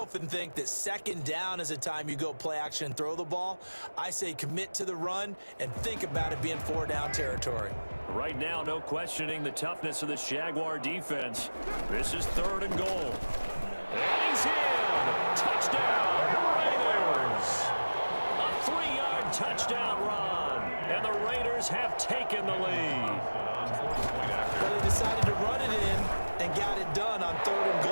think that 2nd down is a time you go play action and throw the ball. I say commit to the run and think about it being 4 down territory. Right now, no questioning the toughness of this Jaguar defense. This is 3rd and goal. And he's in! Touchdown, Raiders! A 3-yard touchdown run, and the Raiders have taken the lead. But they decided to run it in and got it done on 3rd and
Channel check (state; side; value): inverted; both; correlation -1.00